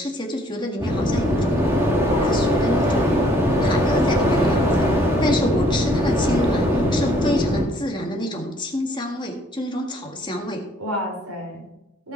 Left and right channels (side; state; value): both; normal; correlation 0.62